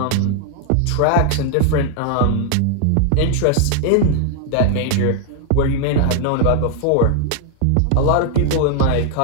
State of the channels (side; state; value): both; different; correlation 0.00